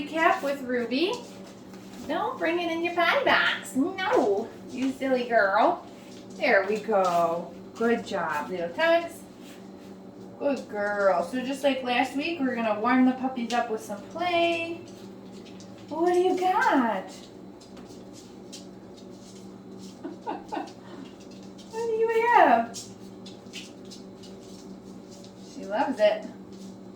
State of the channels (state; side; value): identical; both; correlation 1.00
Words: with Ruby. Don't bring it in your potty box. No, you silly girl. There we go. Good job, little tugs. Good girl. So just like last week, we're going to warm the puppies up with some play. What do you got? What do you have? She loves it.